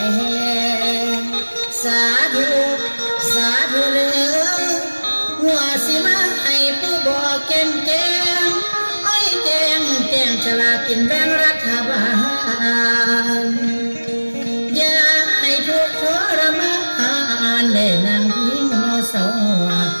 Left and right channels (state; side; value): inverted; both; correlation -1.00